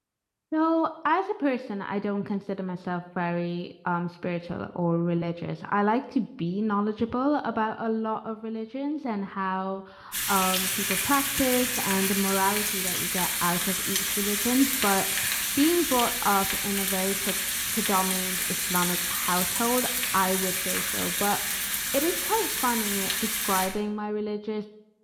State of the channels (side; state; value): both; identical; correlation 1.00